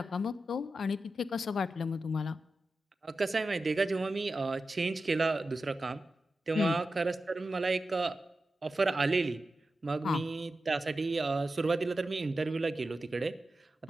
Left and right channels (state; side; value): normal; both; correlation 0.92